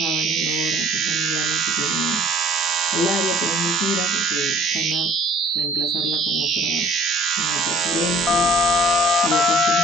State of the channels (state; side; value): normal; both; correlation 0.55